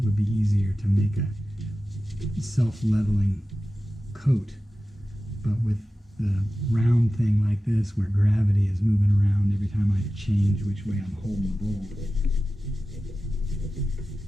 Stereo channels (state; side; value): normal; both; correlation 0.94